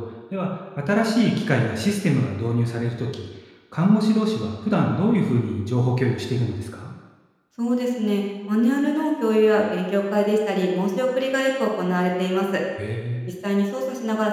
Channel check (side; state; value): both; identical; correlation 1.00